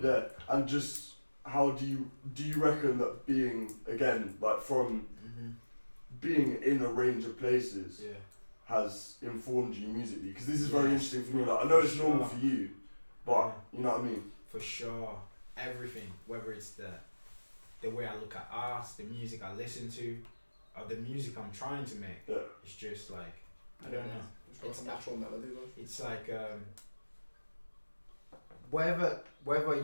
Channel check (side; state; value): both; inverted; correlation -1.00